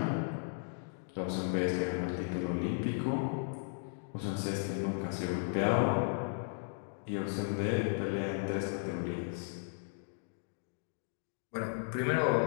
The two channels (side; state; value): right; silent; digital silence